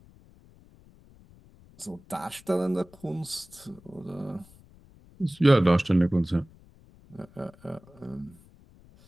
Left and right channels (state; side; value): noise; left; rumble, 25 dB below the sound